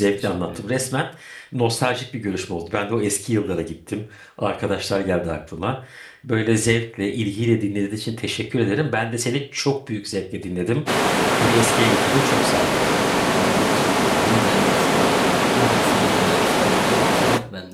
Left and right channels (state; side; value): identical; both; correlation 1.00